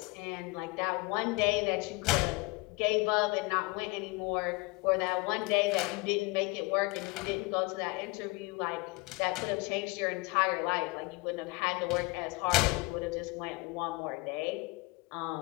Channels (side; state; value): right; quieter; 25.5 dB